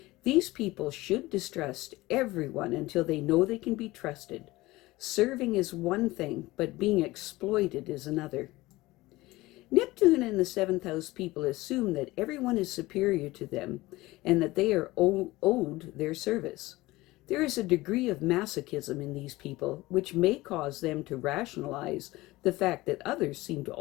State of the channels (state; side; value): quieter; right; 19.5 dB